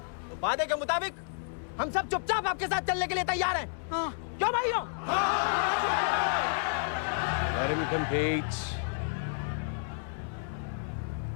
तो वादे के मुताबिक हम सब चुपचाप आपके साथ चलने के लिए तैयार हैं। हाँ। क्यों भाइयों? Let him compete.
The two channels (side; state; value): right; silent; digital silence